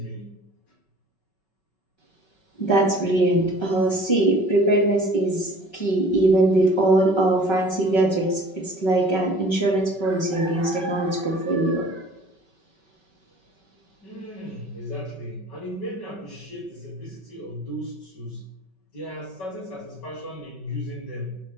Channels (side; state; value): right; late; 5.3 ms